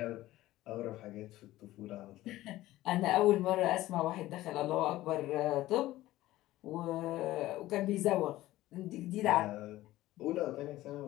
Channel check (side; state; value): right; quieter; 16.1 dB